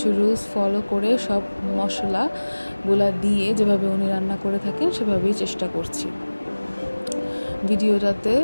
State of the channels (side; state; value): both; inverted; correlation -1.00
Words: রুলস ফলো করে সব মশলাগুলা দিয়ে যেভাবে উনি রান্না করে থাকেন সেভাবেই চেষ্টা করছি। ভিডিওটাতে